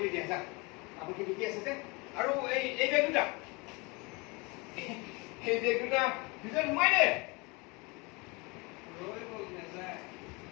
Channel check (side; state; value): right; quieter; 27.5 dB